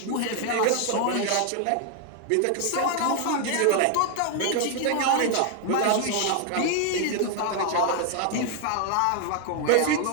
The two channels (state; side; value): different; both; correlation 0.00